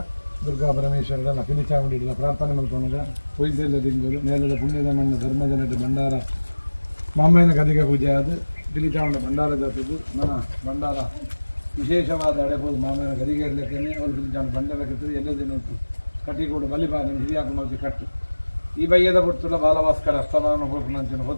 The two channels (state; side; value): inverted; both; correlation -1.00